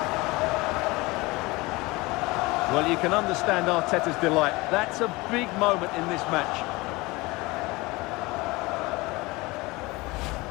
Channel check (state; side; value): quieter; right; 22.8 dB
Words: Well, you can understand Arteta's delight. That's a big moment in this match.